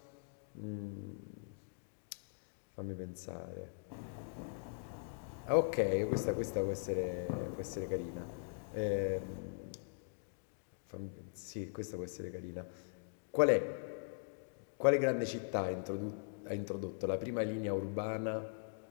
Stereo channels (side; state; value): right; silent; digital silence